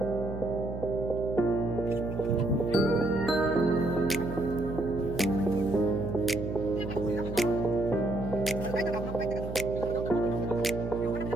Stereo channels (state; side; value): noise; right; hum, 7 dB below the sound